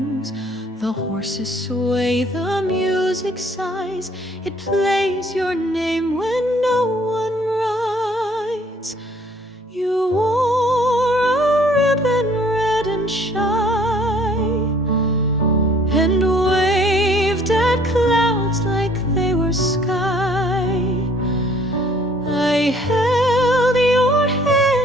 The horses sway, the music sighs, it plays your name when no one rides. You wore a ribbon red and shy, and waved at clouds like they were sky. I held your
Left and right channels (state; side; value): normal; both; correlation 0.58